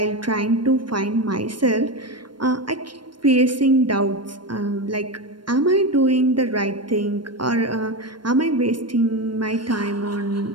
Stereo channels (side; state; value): left; late; 0.72 ms